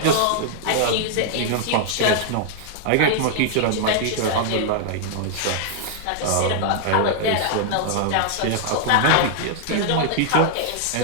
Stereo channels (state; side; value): different; both; correlation -0.01